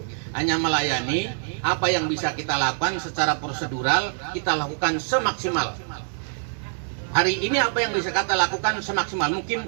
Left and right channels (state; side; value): silent; left; digital silence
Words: Hanya melayani, apa yang bisa kita lakukan secara prosedural, kita lakukan semaksimal. Hari ini apa yang bisa kita lakukan semaksimal